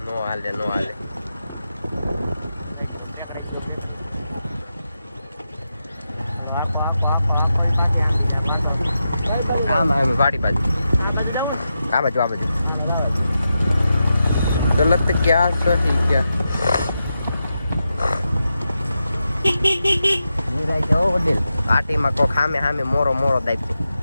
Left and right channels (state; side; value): inverted; both; correlation -0.88